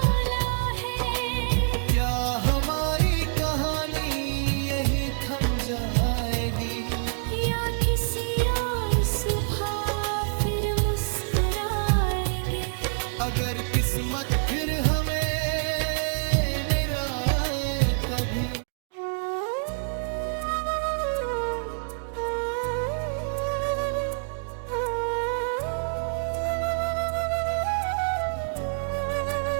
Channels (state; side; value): silent; left; digital silence